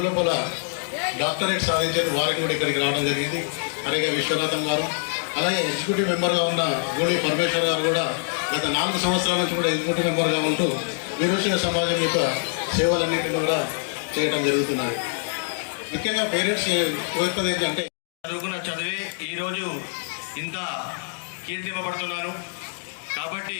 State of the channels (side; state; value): right; silent; digital silence